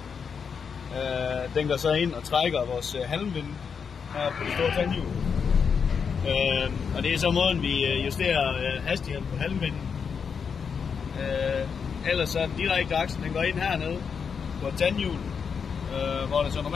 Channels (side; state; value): right; quieter; 6.3 dB